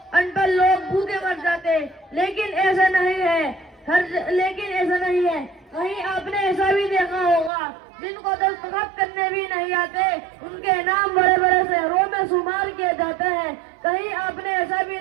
ان پڑھ لوگ بھوکے مر جاتے، لیکن ایسا نہیں ہے، کہیں آپ نے ایسا بھی دیکھا ہوگا جن کو دستخط کرنے بھی نہیں آتے، ان کے نام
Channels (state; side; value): drops out; left; at 7.5 s